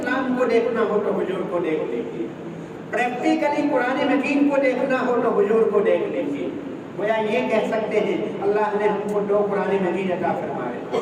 کو دیکھنا ہو تو حضور کو دیکھ لیجیے، پریکٹیکلی قرآن مجید کو دیکھنا ہو تو حضور کو دیکھ لیجیے. گویا یہ کہہ سکتے ہیں اللہ نے ہم کو دو قرآن مجید عطا فرمائے،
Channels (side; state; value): both; identical; correlation 1.00